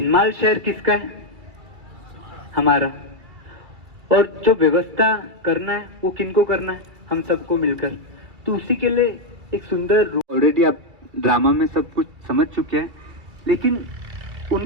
शहर किसका है? हमारा। और जो व्यवस्था करना है वो किनको करना है? हम सबको मिलकर। तो उसी के लिए एक सुंदर, ऑलरेडी आप ड्रामा में सब कुछ समझ चुके हैं, लेकिन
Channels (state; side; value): late; left; 2.3 ms